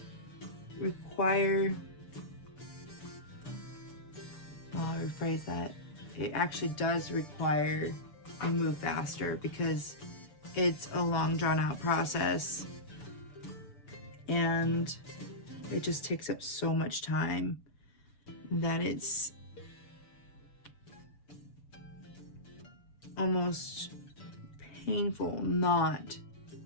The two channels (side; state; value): right; late; 6.9 ms